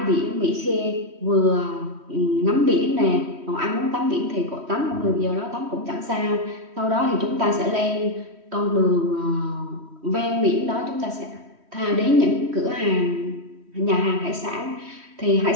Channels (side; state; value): left; late; 3.1 ms